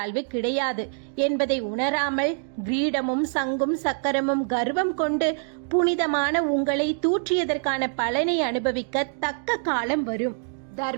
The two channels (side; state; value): left; silent; digital silence